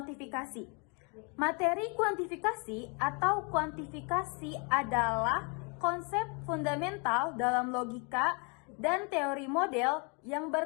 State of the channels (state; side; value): quieter; right; 34.2 dB